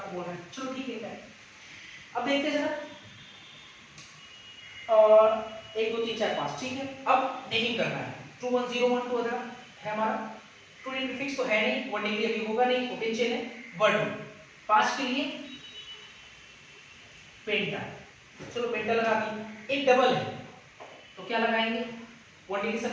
बोल रहे हैं। चलो ठीक है, अब देखते हैं जरा, और 1 2 3 4 5, ठीक है। अब नेमिंग करना है। 2101 तो अगर है हमारा 2D प्रीफिक्स तो है नहीं, 1 डिग्री अभी होगा नहीं, ओपन चेन है। 1 2 5 के लिए पेंटा, चलो पेंटा लगा दी। एक डबल है तो क्या लगाएंगे? 1 डिग्री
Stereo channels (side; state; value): both; identical; correlation 1.00